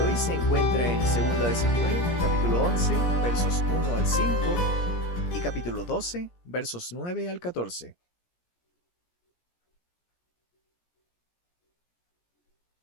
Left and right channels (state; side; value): late; right; 17 ms